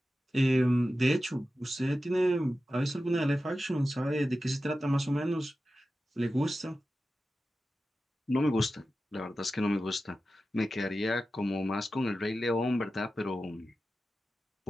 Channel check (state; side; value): normal; both; correlation 0.93